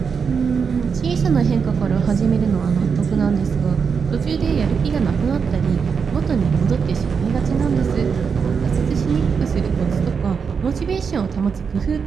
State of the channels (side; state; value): left; quieter; 6.0 dB